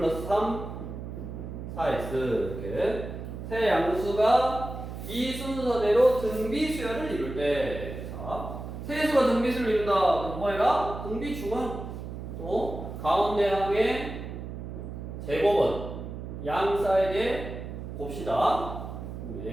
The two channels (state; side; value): noise; right; hum, 8 dB below the sound